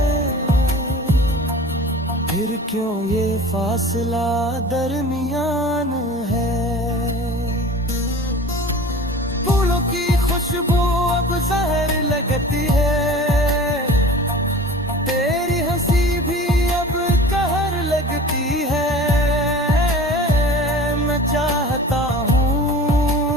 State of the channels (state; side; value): normal; both; correlation 0.40